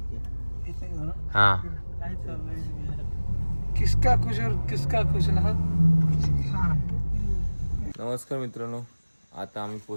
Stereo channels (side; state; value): both; inverted; correlation -1.00